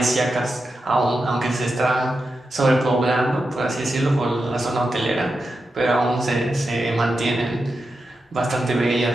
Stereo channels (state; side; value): normal; both; correlation 0.89